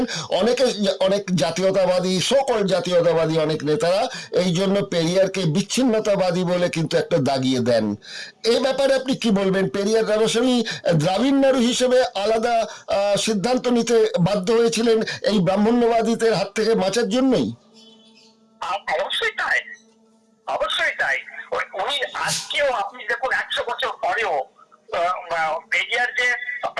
অনেক জাতীয়তাবাদী, সকল জাতীয়তাবাদী অনেক নেতারা এই জন্য পেরিয়ারকে বিচ্ছিন্নতাবাদী বলে কিন্তু একটা দাগিয়ে দেন। এই ব্যাপারে আপনি কি বলবেন? পেরিয়ার রামাস্বামী দ্রাবিড় নাড়ু হিসেবে আলাদা সিদ্ধান্ত নিতে বাধ্য হয়েছিলেন এই ব্রাহ্মণ্যবাদীদের হাত থেকে বাঁচার জন্যই? অবশ্যই তাই। উনি আজকেও আপনি দেখুন 100 বছর পরেও পেরিয়ার যে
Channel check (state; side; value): identical; both; correlation 1.00